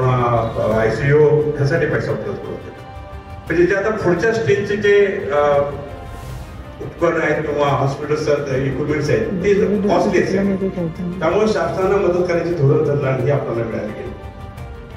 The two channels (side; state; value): both; identical; correlation 1.00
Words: ICU ह्यासाठी पैसा उपलब्ध करून दिला. म्हणजे जे आता पुढच्या स्टेजचे जे उपकरण आहेत किंवा हॉस्पिटल्स इक्विपमेंट्स आहेत ते कॉस्टली आहेत, त्यामुळे शासनाला मदत करायची धोरण ठरलं आणि हे आपल्याला मिळालं गेलं.